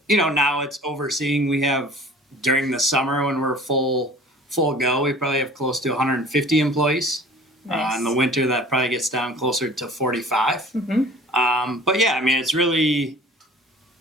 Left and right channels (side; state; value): both; normal; correlation 0.46